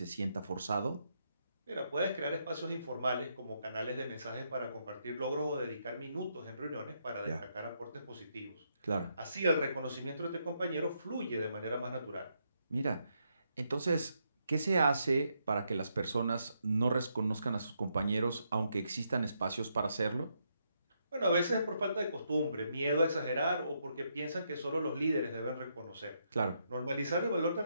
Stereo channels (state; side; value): inverted; both; correlation -0.78